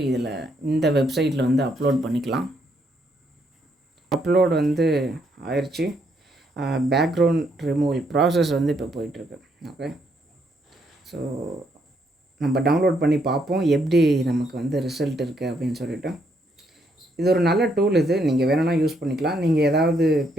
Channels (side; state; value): both; normal; correlation 0.74